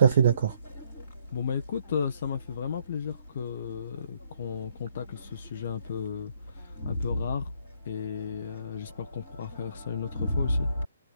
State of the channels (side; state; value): both; inverted; correlation -0.69